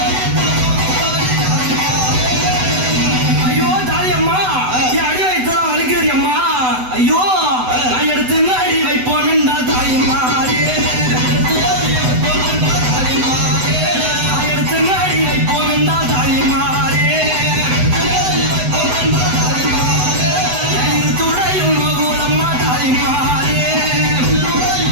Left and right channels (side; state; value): left; late; 8.0 ms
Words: ஐயோ தாயம்மா, என் அடி வைத்ததா வலிக்கிறது அம்மா. ஐயோ நான் எடுத்து அடி வைப்போம் என்றா தாயம்மாரே, எடுத்து அடி வைப்போம் என்றா தாயம்மாரே. துறையும் மகுலம்மா தாயம்மாரே.